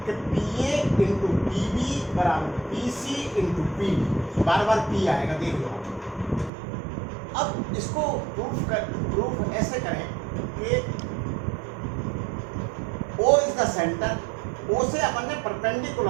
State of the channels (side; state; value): left; drops out; at 6.5 s